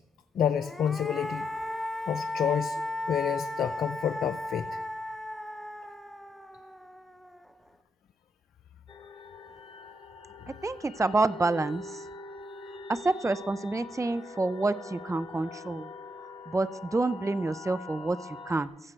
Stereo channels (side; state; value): both; normal; correlation 0.79